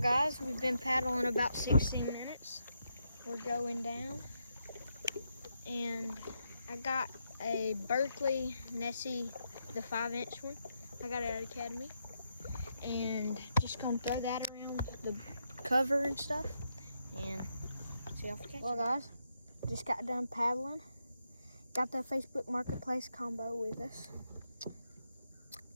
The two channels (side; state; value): both; inverted; correlation -0.81